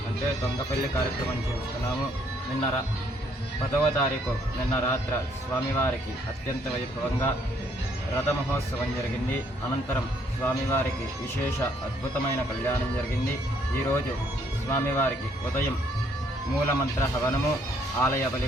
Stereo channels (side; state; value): both; normal; correlation 0.67